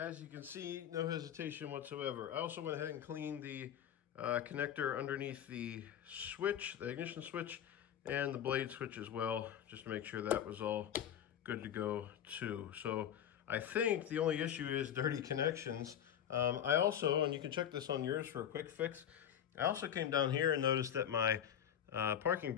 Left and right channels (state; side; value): quieter; right; 9.8 dB